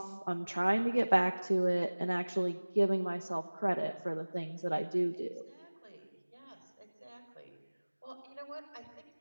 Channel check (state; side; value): inverted; both; correlation -1.00